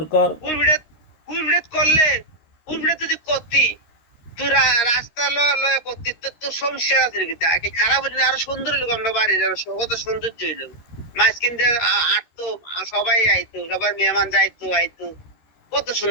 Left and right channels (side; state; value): right; late; 13 ms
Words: কর। ফুরবিড়াত করলে, ফুরবিড়াত যদি করতি, তুই রাস্তা লয় করতি, তোর সমস্যা আছে কিতে? আগে খারাপ হইলে আরো সুন্দর হইলো, আমরা বাড়ির আরো কত সৌন্দর্য হইলো। মাঝখান দিয়ে আটতো, সবাই আইতো, সবার মেহমান যাইতো আইতো, কত